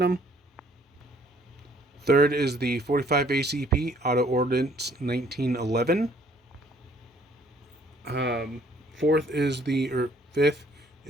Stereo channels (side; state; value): both; normal; correlation 0.62